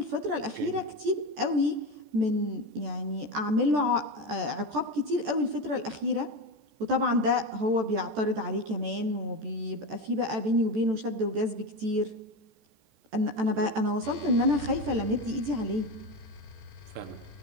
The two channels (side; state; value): left; late; 14 ms